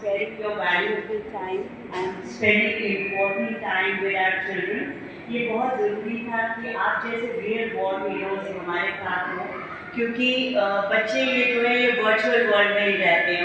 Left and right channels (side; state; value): both; identical; correlation 1.00